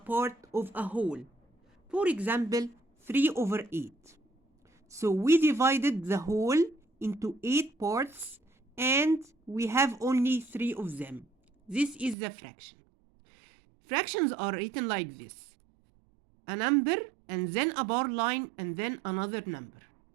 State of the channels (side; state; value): left; drops out; at 12.2 s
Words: of a whole. For example, 3/8. So we divided the whole into 8 parts and we have only 3 of them. This is the fraction. Fractions are written like this. A number and then a bar line and then another number.